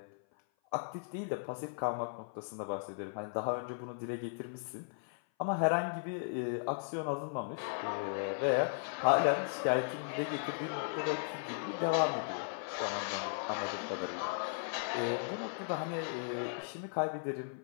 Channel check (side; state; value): right; silent; 53 dB below the other